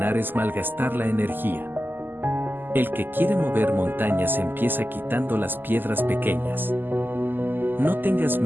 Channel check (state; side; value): late; left; 0.092 ms